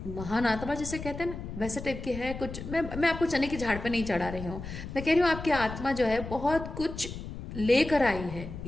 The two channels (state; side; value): noise; left; rumble, 9 dB below the sound